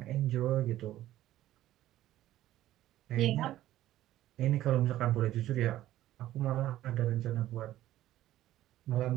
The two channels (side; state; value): left; quieter; 14.1 dB